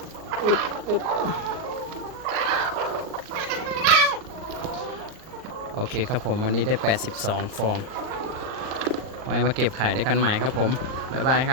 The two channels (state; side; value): late; left; 38 ms